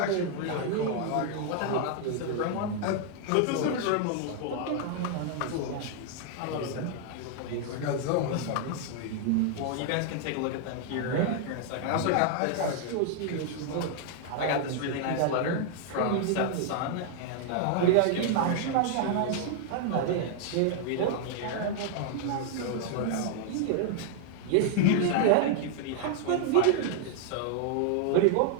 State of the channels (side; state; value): both; different; correlation 0.00